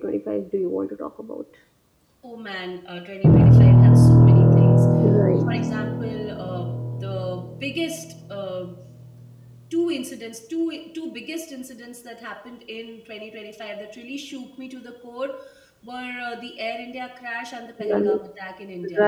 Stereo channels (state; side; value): identical; both; correlation 1.00